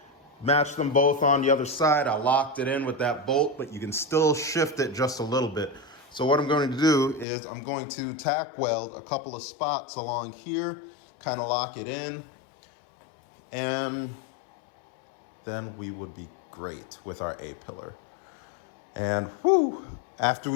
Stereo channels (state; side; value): drops out; right; at 7.2 s